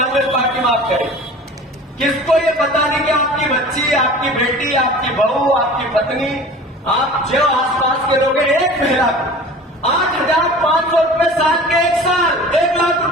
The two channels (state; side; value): normal; both; correlation 0.41